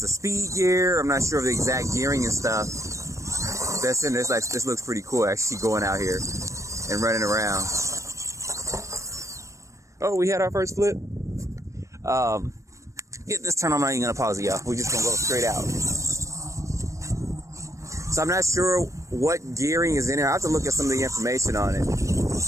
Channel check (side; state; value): left; late; 0.15 ms